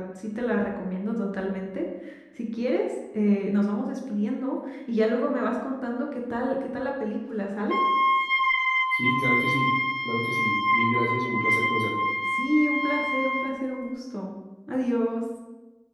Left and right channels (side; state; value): both; identical; correlation 1.00